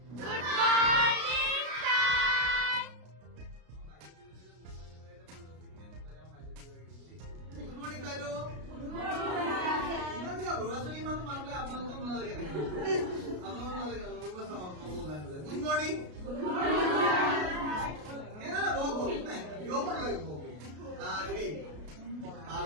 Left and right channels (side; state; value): left; late; 33 ms